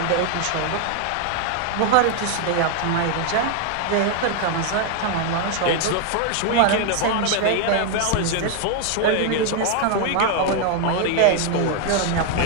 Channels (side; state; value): both; different; correlation 0.01